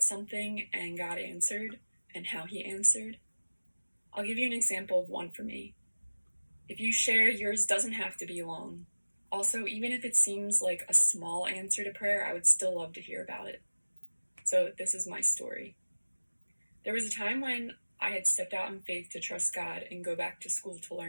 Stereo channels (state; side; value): inverted; both; correlation -1.00